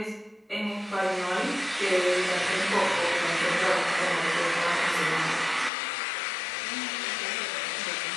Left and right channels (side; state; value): right; drops out; at 5.7 s